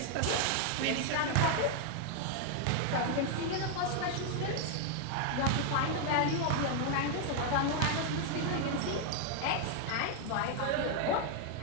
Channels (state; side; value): different; both; correlation 0.00